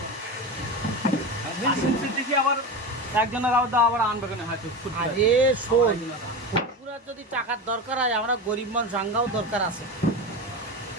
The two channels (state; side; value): normal; both; correlation 0.23